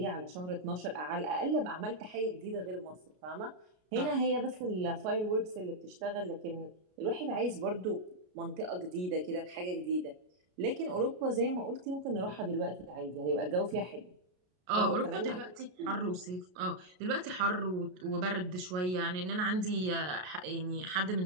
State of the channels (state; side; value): late; left; 33 ms